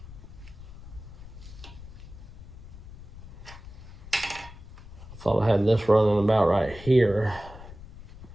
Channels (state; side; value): noise; left; rumble, 15 dB below the sound